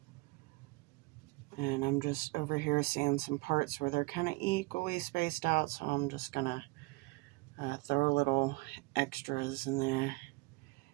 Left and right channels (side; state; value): left; quieter; 24.7 dB